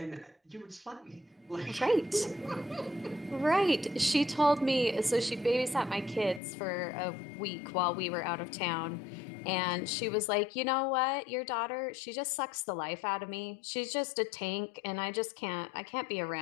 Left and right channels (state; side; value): drops out; right; at 6.4 s